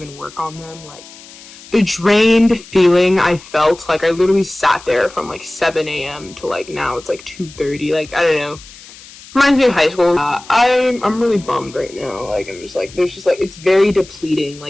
work on them. Like the drained feeling I felt, like I literally sat there from like 7 a.m. to like now it's like 2:30. Like I don't know. Reminds me of high school. I'm really bummed right now. Like I'm just like there's just like it's very depleting.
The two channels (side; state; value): left; noise; hiss, 20 dB below the sound